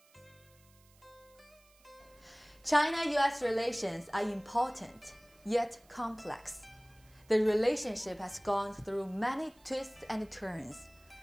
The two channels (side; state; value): right; noise; hiss, 29 dB below the sound